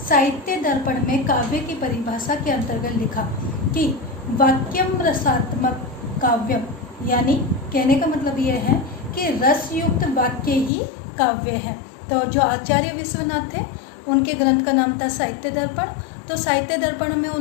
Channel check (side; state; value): right; drops out; at 10.7 s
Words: साहित्य दर्पण में काव्य की परिभाषा के अंतर्गत लिखा कि वाक्यम रसात्मक काव्यम, यानी कहने का मतलब यह है कि रस युक्त वाक्य ही काव्य है। तो जो आचार्य विश्वनाथ थे उनके ग्रंथ का नाम था साहित्य दर्पण। तो साहित्य दर्पण में